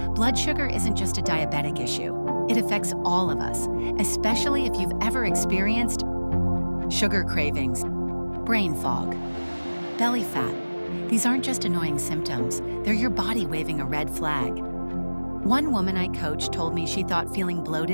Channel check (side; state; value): both; inverted; correlation -1.00